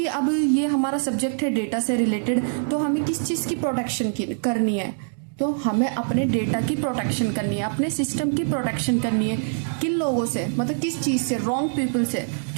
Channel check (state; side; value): silent; left; digital silence